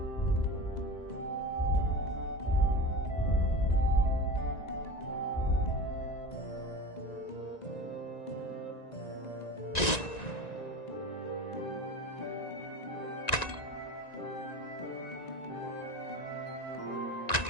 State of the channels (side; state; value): right; late; 1.9 ms